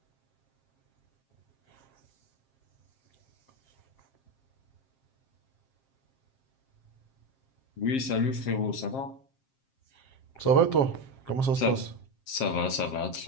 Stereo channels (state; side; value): late; right; 7.5 ms